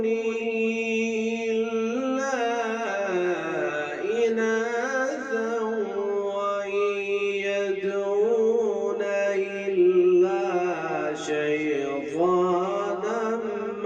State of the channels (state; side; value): identical; both; correlation 1.00